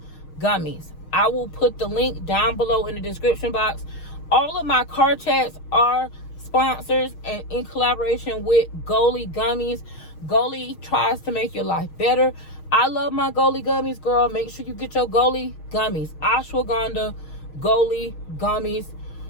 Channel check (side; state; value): right; late; 6.4 ms